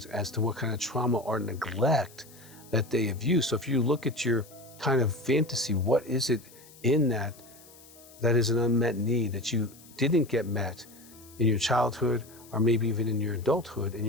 as to what kind of trauma or neglect that they have used. So if you look at your kind of fantasy, what is it in that is an unmet need that you didn't get met in your childhood or maybe even in your adulthood, and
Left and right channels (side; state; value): left; noise; hiss, 23 dB below the sound